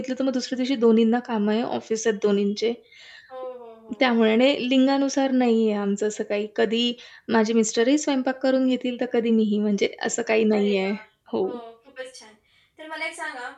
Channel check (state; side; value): identical; both; correlation 1.00